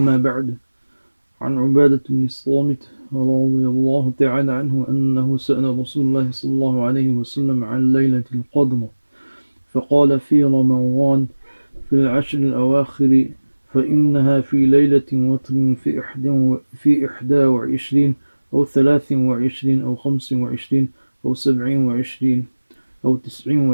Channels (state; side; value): inverted; both; correlation -1.00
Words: بعد عن عبادة بن الصامت رضي الله تعالى عنه أنه سأل رسول الله صلى الله عليه وسلم عن ليلة القدر فقال في رمضان في العشر الأواخر فإنها في ليلة وتر في 21 أو 23 أو 25 أو 27 أو